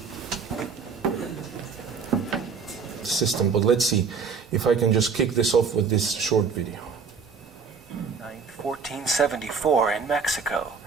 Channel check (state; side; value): quieter; left; 5.6 dB